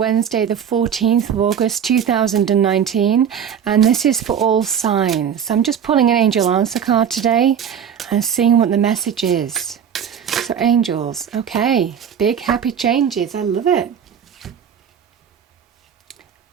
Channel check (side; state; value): left; quieter; 8.2 dB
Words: the 14th of August 2019, and this is for all signs. I'm just pulling an angel answer card today and seeing what the message is. So angels, okay, big happy changes, I love it.